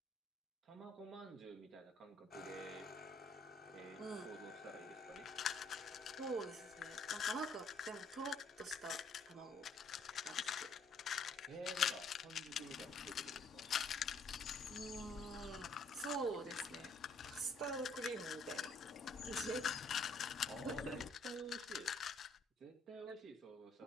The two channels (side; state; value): right; quieter; 3.1 dB